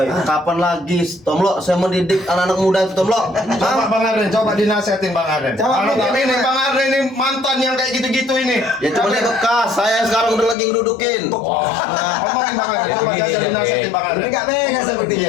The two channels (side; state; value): right; drops out; at 10.6 s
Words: kapan lagi, Tomlo? Saya mendidik anak-anak muda itu, Tomlo. Coba Bang Arden, coba dinasihatin Bang Arden. Coba, Kalau Bang, tapi ini Bang. Bang Arden ini mantan yang kayak gitu-gitu ini. Ya cuma dia bekas. Saya sekarang udah lagi ngedudukin. Nah, ngomongin Bang Arden, coba Begini, kasih dinasihatin Bang Arden. Enggak mega